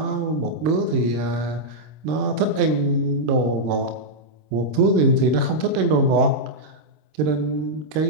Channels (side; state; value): left; late; 26 ms